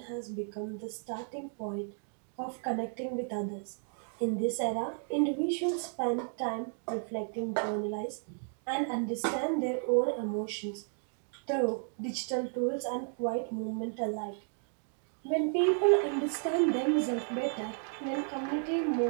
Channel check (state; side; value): silent; left; 56 dB below the other